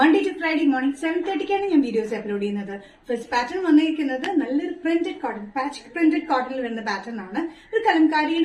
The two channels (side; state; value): both; identical; correlation 1.00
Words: ടു ഫ്രൈഡേ മോർണിംഗ് 7:30 ഞാൻ വീഡിയോസ് അപ്ലോഡ് ചെയ്യുന്നത്. ഫസ്റ്റ് പാറ്റേൺ വന്നിരിക്കുന്നത് നല്ലൊരു പ്രിന്റഡ് കോട്ടൺ, പാച്ച് പ്രിന്റഡ് കോട്ടണിൽ വരുന്ന പാറ്റേൺ ആണ്. ഒരു